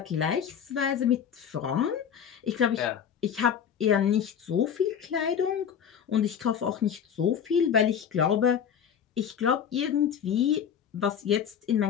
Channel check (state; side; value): quieter; right; 8.2 dB